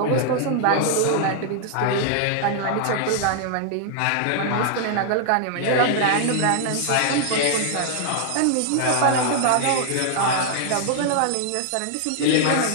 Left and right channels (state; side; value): different; both; correlation 0.00